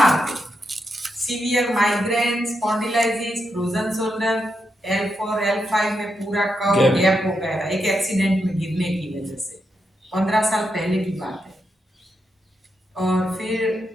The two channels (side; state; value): both; normal; correlation 0.84